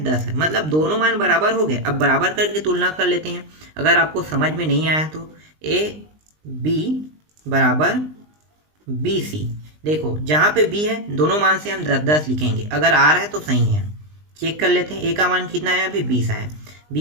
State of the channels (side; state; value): left; late; 19 ms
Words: 10 है। मतलब दोनों मान बराबर हो गए। अब बराबर करके तुलना कर लेते हैं। अगर आपको समझ में नहीं आया तो a/b बराबर b/c। देखो जहाँ पे b है दोनों मान से हम 10 लिखेंगे, अगर आ रहा है तो सही है। चेक कर लेते हैं, a का मान कितना है, अभी 20 आया,